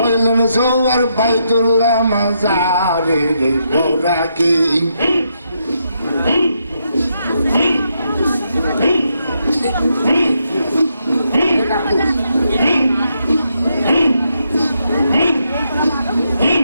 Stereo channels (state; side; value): inverted; both; correlation -0.80